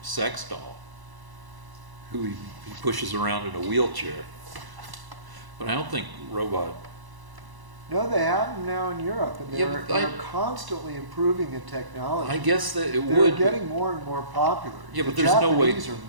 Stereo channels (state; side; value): late; left; 1.0 ms